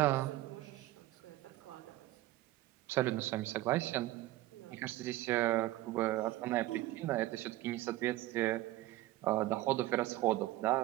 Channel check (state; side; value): quieter; left; 16.6 dB